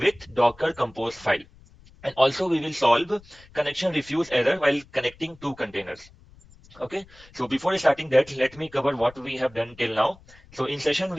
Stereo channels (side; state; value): left; noise; rumble, 25 dB below the sound